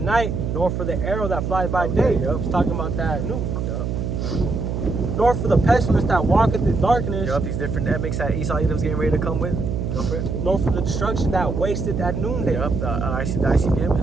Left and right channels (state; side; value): noise; right; hum, 2 dB below the sound